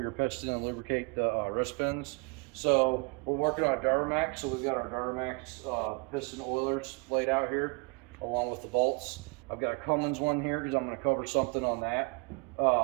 piston and lubricate the wrist pins. So we're working on a Duramax, so we've got our Duramax piston oilers laid out here along with the bolts. I've got a Cummins one here because I'm going to cover something on that.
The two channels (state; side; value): quieter; left; 30.8 dB